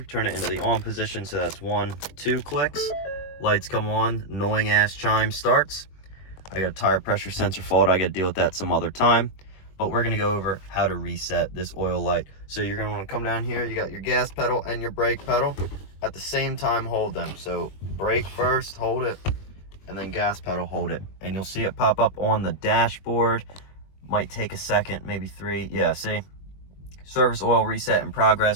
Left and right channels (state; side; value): late; right; 21 ms